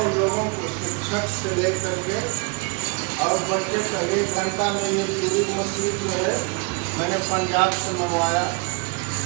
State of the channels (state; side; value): quieter; left; 31.7 dB